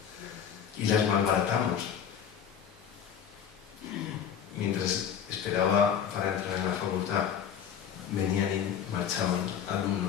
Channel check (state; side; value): quieter; right; 8.3 dB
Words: Y las malbaratamos. Mientras esperaba para entrar en la facultad, venían y marchaban